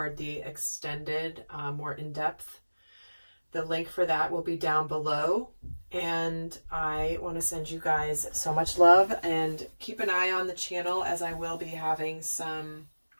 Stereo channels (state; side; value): inverted; both; correlation -1.00